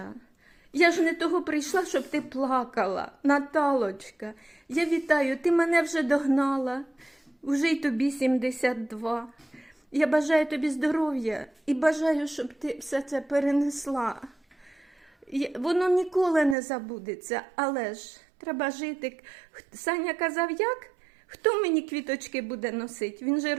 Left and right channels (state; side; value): drops out; left; at 16.6 s